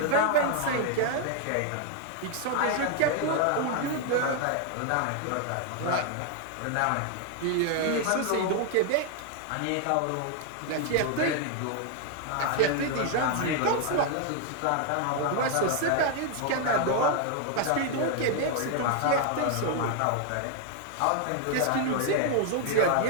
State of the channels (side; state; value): both; different; correlation 0.00